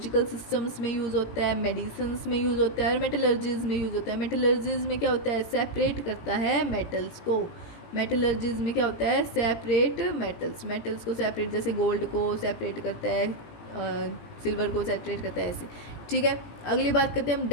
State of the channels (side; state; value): right; late; 18 ms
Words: सिस्टम्स में यूज़ होता है, मेडिसिन्स में यूज़ होता है, और मेटलर्जीज में यूज़ होता है। मेटलर्जीज में क्या होता है, सेपरेट करता है मेटल्स को। मेटलर्जीज में क्या होता है, सेपरेट मेटल्स को सेपरेट, जैसे गोल्ड को सेपरेट करता है, सिल्वर को सेपरेट करता है, ऐसे। ठीक है, अगली बात करते हैं हम